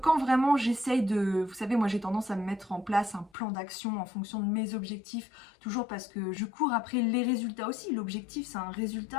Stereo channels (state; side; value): drops out; right; at 3.3 s